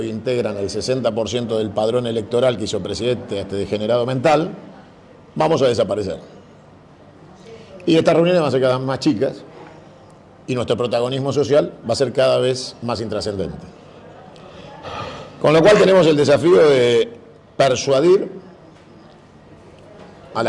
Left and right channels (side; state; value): both; identical; correlation 1.00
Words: integran el 60% del padrón electoral que hizo presidente a este degenerado mental, vamos a desaparecer. Y estas reuniones van a ser cada vez más chicas y nuestro protagonismo social va a ser cada vez más intrascendente. Con lo cual tenemos el desafío de persuadir a